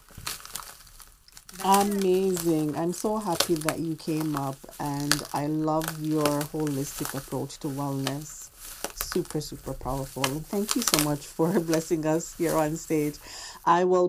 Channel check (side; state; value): both; identical; correlation 1.00